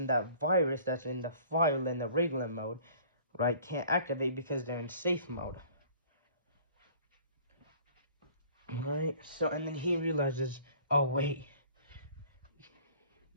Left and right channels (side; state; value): both; inverted; correlation -0.51